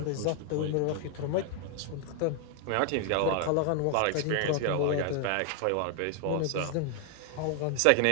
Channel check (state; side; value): different; both; correlation 0.00